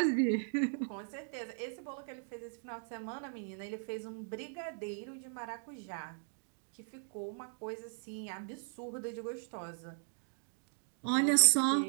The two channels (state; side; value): silent; left; digital silence